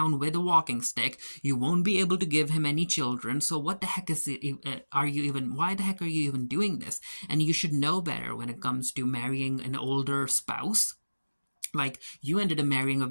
with a walking stick. You won't be able to give him any children. So what the heck why the heck are you even doing this? And you should know better when it comes to marrying an older spouse. Like, you ended up marrying a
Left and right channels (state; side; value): inverted; both; correlation -1.00